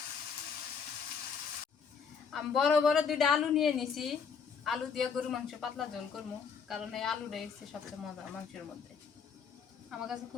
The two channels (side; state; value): right; quieter; 6.2 dB